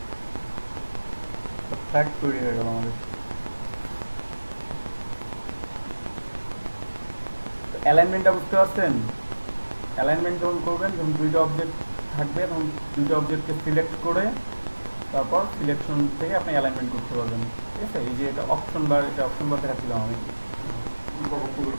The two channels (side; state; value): both; inverted; correlation -1.00